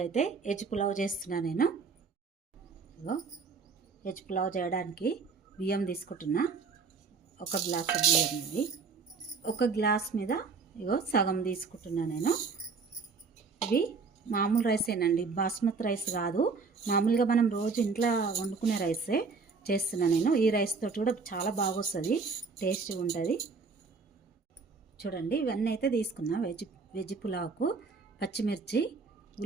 అయితే వెజ్ పులావ్ చేస్తున్నా నేను. ఇగో వెజ్ పులావ్ చేయడానికి బియ్యం తీసుకుంటున్నా. ఒక గ్లాస్ బియ్యం ఇది. ఒక గ్లాస్ మీద ఇగో సగం తీసుకుంటున్నా నేను. ఇవి మామూలు రైసేనండి, బాస్మతి రైస్ కాదు. మామూలుగా మనం రోజు ఇంట్లో వండుకునే రైసే చేస్తున్నా నేను. ఈ రైస్ తోటి కూడా చాలా బాగా వస్తుంది, టేస్ట్గా ఉంటుంది. చూడండి, ఇవన్నీ అయితే తీసుకున్నా. వెజ్ పులావ్కు పచ్చిమిర్చి,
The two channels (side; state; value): left; quieter; 4.8 dB